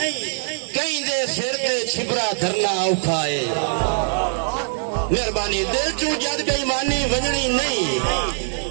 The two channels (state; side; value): silent; left; 57 dB below the other